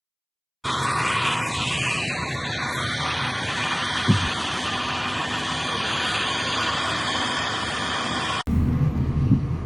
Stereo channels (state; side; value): identical; both; correlation 1.00